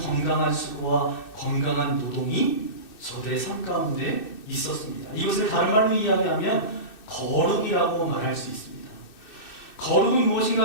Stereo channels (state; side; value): late; right; 2.6 ms